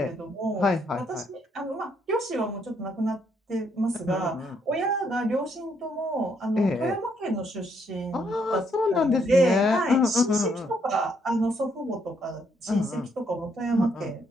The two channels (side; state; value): both; normal; correlation 0.72